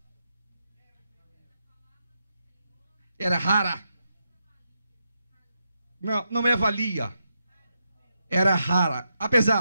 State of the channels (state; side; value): inverted; both; correlation -0.84